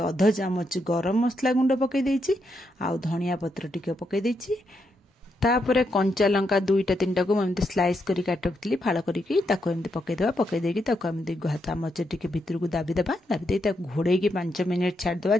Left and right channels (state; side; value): normal; both; correlation 0.81